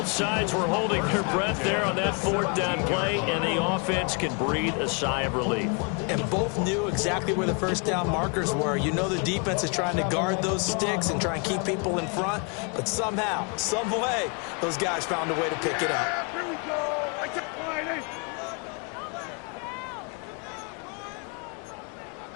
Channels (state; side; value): quieter; right; 34.8 dB